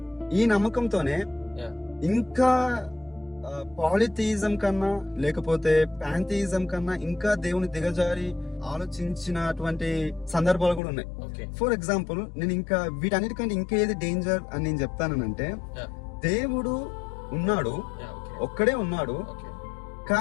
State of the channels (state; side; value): drops out; right; at 10.8 s